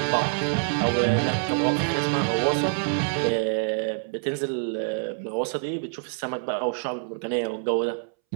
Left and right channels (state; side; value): silent; left; 61 dB below the other